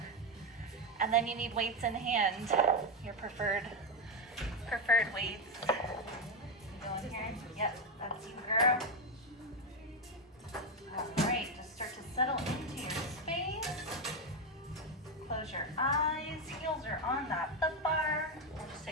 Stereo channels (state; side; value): normal; both; correlation 0.08